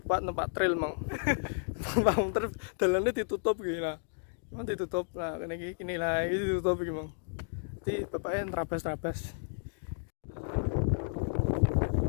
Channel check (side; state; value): right; silent; digital silence